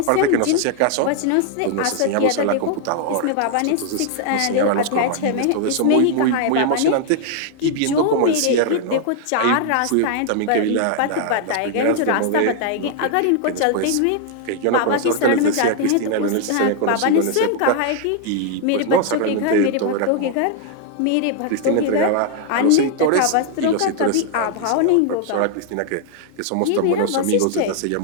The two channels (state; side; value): different; both; correlation 0.00